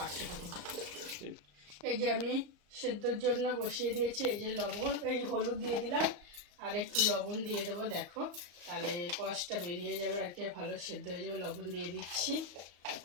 থাকো। এই যে আমি সেদ্ধর জন্য বসিয়ে দিয়েছি। এই যে লবণ, এই হলুদ দিয়ে দিলাম আর একটু লবণ দিয়ে দেবো। দেখো তাহলে কষটা বেরিয়ে যাবে আর কি, ভালো সেদ্ধ হয়ে যাবে। লবণ দিয়ে দিচ্ছি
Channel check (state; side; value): late; left; 34 ms